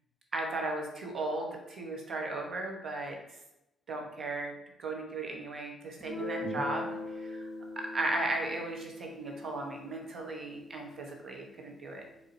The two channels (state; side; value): normal; both; correlation 0.67